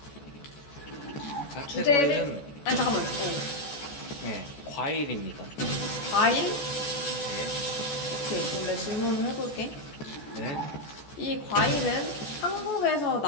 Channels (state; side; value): late; right; 14 ms